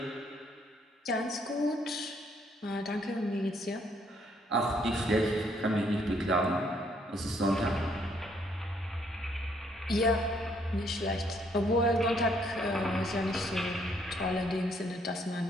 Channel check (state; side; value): normal; both; correlation 0.68